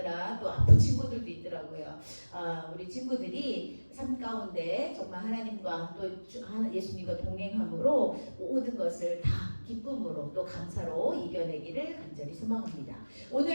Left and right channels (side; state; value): both; inverted; correlation -1.00